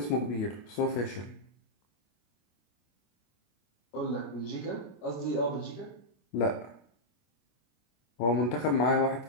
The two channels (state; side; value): late; right; 25 ms